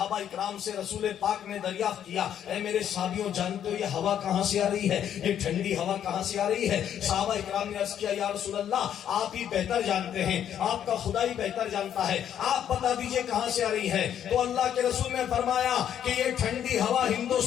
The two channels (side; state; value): right; quieter; 9.7 dB